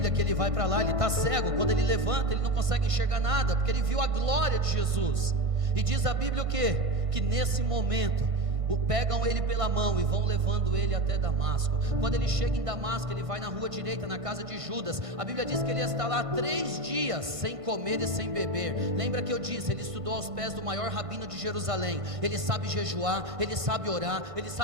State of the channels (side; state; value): left; late; 1.5 ms